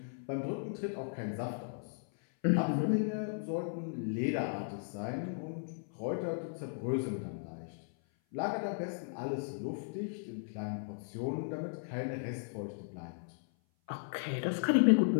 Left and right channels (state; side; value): silent; right; 54 dB below the other